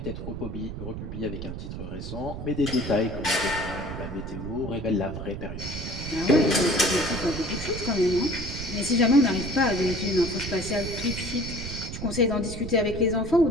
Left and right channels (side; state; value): right; noise; rumble, 7 dB below the sound